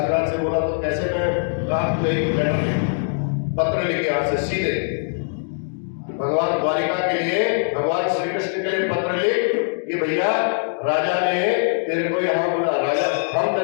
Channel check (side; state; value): right; silent; digital silence